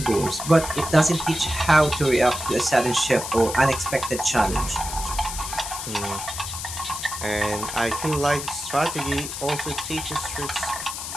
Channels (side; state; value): left; noise; hiss, 7 dB below the sound